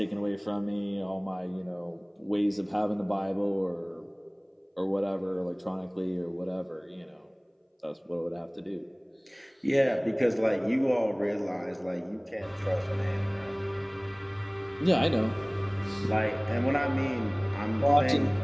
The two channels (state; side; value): identical; both; correlation 1.00